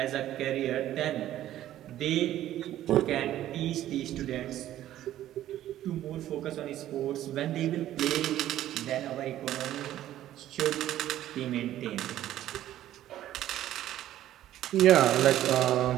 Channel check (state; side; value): quieter; left; 13.0 dB